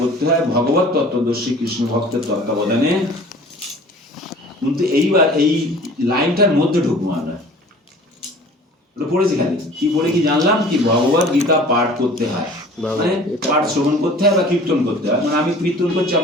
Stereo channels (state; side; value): normal; both; correlation 0.46